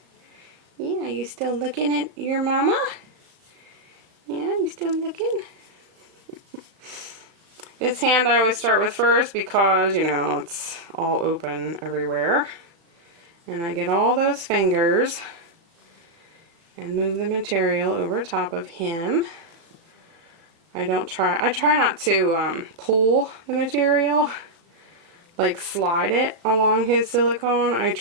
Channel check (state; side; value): late; left; 35 ms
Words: Yeah, you still looking at your mama? Yeah, you still looking? This hand I always start with first because, you know, it's all open everywhere. And I get all those fingers and move the material over top of him. I try not to pull the material, like slide it along his silicone. I